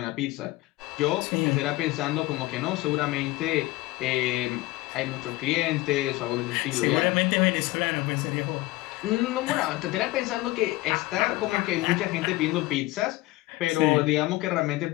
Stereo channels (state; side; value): quieter; right; 19.0 dB